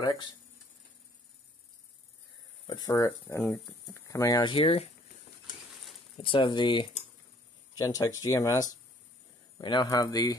But and coming out here, let's have the Gentex GMS. We now have the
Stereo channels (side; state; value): both; normal; correlation 0.60